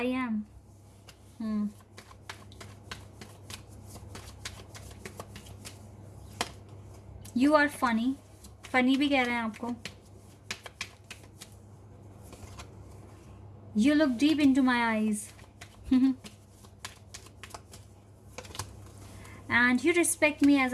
am, you are funny, funny भी कह रहे हैं आपको। You look deep into my eyes and you respect me as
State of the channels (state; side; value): identical; both; correlation 1.00